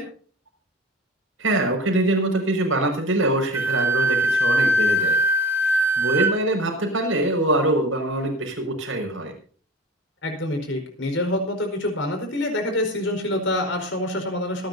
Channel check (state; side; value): normal; both; correlation 0.34